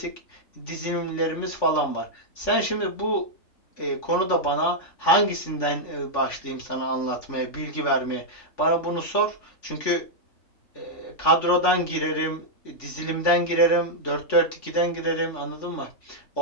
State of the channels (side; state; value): right; late; 3.5 ms